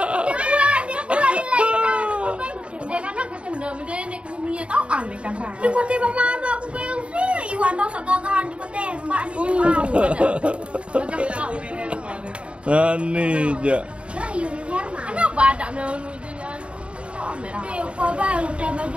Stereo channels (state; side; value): late; left; 0.059 ms